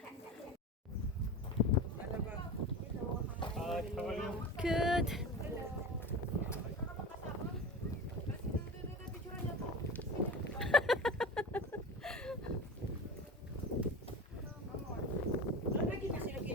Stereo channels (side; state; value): both; normal; correlation 0.30